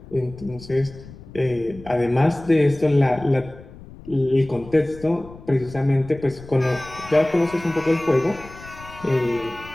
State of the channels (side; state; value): left; noise; rumble, 18 dB below the sound